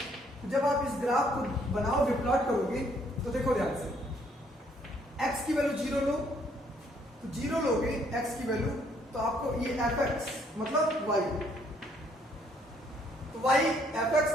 जब आप इस ग्राफ को बनाओगे, प्लॉट करोगे, तो देखो ध्यान से, x की वैल्यू 0 लो, तो 0 लोगे x की वैल्यू, तो आपको ये fx मतलब y, तो y fx,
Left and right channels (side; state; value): both; normal; correlation 0.67